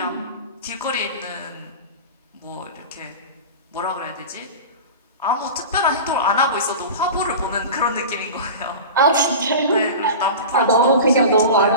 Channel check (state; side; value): inverted; both; correlation -0.31